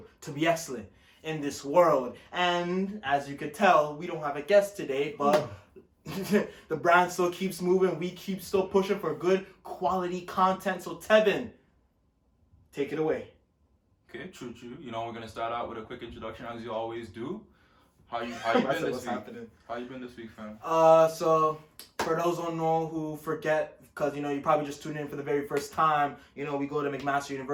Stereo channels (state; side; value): identical; both; correlation 1.00